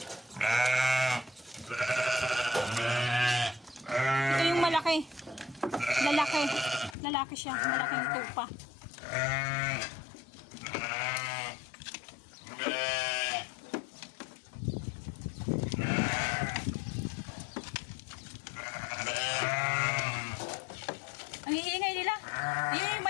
Ito yung malaki. Lalaki. Lalaki siya. Malaking tupa. Ang iingay nila. Ayun yung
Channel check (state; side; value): drops out; right; at 7.0 s